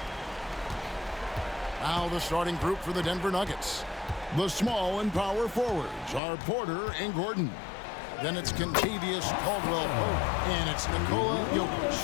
Now the starting group for the Denver Nuggets. The small and power forwards are Porter and Gordon. Then it's Kentavious Caldwell-Pope, and it's Nikola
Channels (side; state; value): right; drops out; at 6.2 s